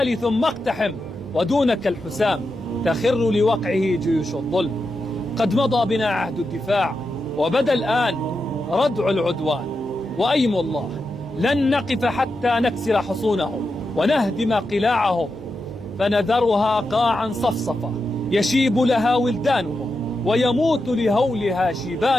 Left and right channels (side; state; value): both; normal; correlation 0.88